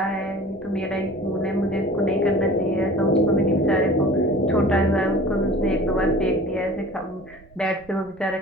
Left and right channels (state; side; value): noise; right; rumble, 26 dB below the sound